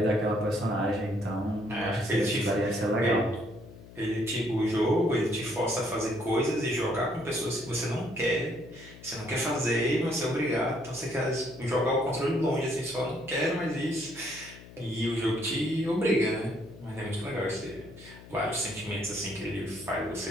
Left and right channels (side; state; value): left; noise; hum, 18 dB below the sound